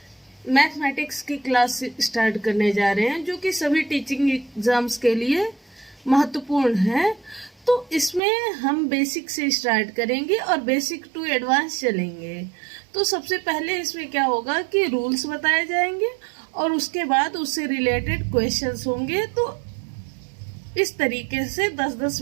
मैथमेटिक्स की क्लास स्टार्ट करने जा रहे हैं जो कि सभी टीचिंग एग्जाम्स के लिए महत्वपूर्ण है। तो इसमें हम बेसिक से स्टार्ट करेंगे और बेसिक टू एडवांस चलेंगे। तो सबसे पहले इसमें क्या होगा कि रूल्स बताए जाएंगे और उसके बाद उससे रिलेटेड क्वेश्चंस होंगे। तो इस तरीके से 10-10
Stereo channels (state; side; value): drops out; left; at 8.2 s